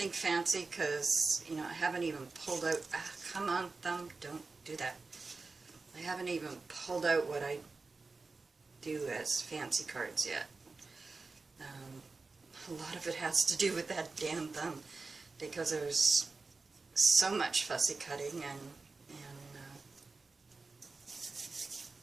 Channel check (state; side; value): quieter; left; 4.0 dB